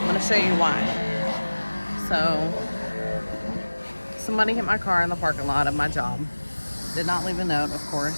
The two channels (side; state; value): both; inverted; correlation -1.00